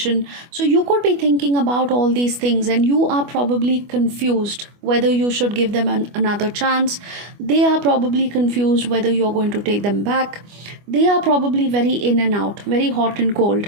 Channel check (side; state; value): left; late; 25 ms